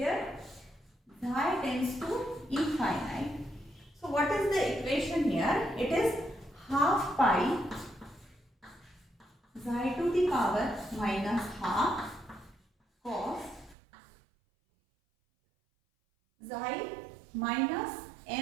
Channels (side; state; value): left; drops out; at 13.8 s